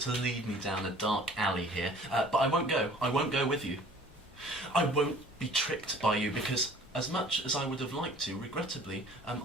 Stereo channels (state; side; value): normal; both; correlation 0.50